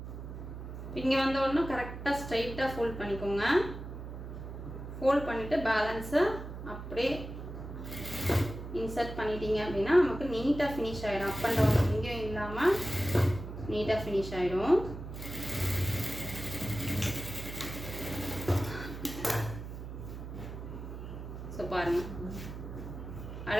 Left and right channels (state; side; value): noise; right; hum, 9 dB below the sound